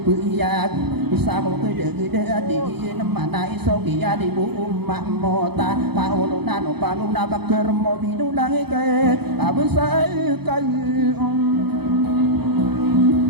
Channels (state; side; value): late; left; 0.97 ms